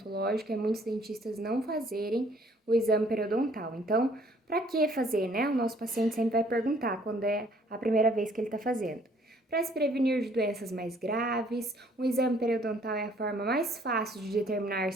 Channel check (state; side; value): normal; both; correlation 0.61